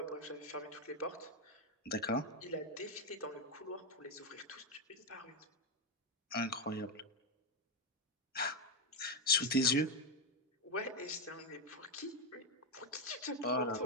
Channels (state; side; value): normal; both; correlation 0.07